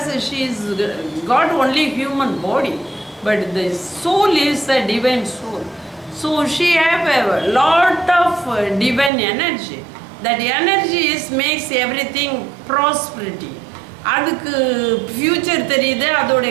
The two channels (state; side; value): drops out; left; at 9.1 s